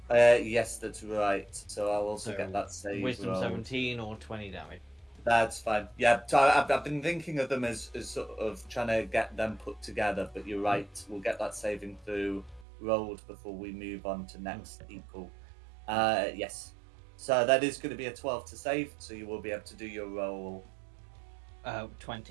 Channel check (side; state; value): left; drops out; at 12.7 s